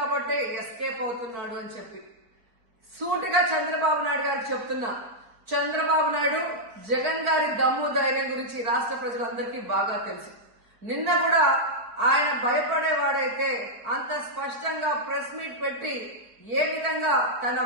ఎస్కేప్ అవుతున్నాడు అని చెప్పి సూటిగా చంద్రబాబు నాయుడు గారికి చెప్తున్నా. చంద్రబాబు నాయుడు జగన్ గారి దమ్ము ధైర్యం గురించి రాష్ట్ర ప్రజలందరికీ బాగా తెలుసు. నిన్న కూడా ఆయన భయపడేవాడైతే అంత స్పష్టంగా ప్రెస్ మీట్ పెట్టి ఏ విధంగా తన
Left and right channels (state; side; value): late; left; 4.3 ms